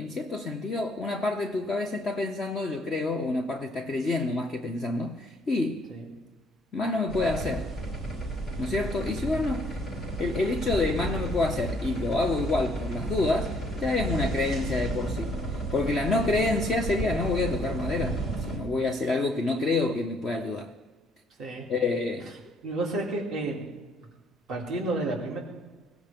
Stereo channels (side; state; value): both; normal; correlation 0.65